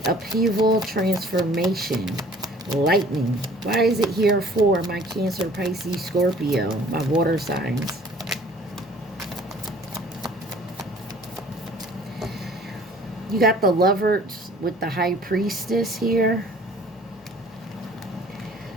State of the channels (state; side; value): normal; both; correlation 0.52